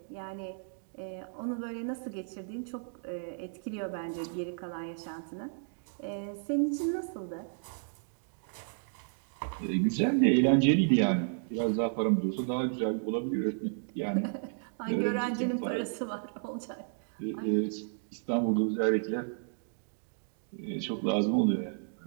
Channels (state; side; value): silent; left; digital silence